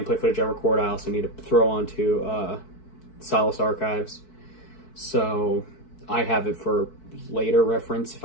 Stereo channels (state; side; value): late; right; 4.6 ms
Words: footage I record, I also need to throw onto Silas Archives. So I have it for later reference if